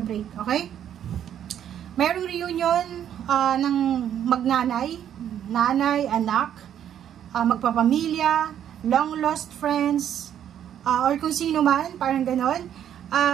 okay? Mayroong reunion ng magnanay, nanay, anak, magpapamilya, long lost friends, or kung sino man, parang ganon.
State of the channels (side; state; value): left; quieter; 10.0 dB